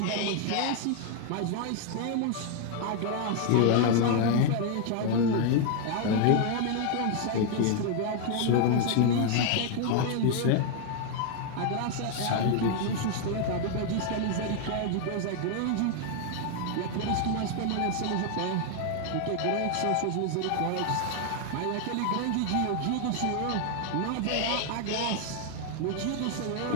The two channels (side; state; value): both; different; correlation 0.00